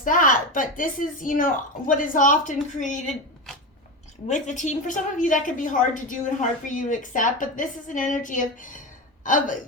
that. But this is, you know, what is often created with the team. For some of you, that could be hard to do and hard for you to accept. But this is an energy of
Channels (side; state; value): both; normal; correlation 0.20